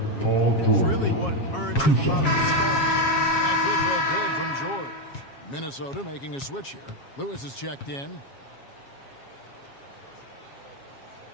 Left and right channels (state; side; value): late; right; 7.4 ms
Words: Paul It's George. really what earns him a lot of his calls. That free throw good from George. Minnesota making a switch here. Lewis is checked in.